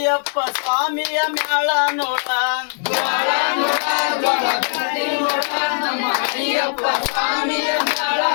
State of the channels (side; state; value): right; silent; 66 dB below the other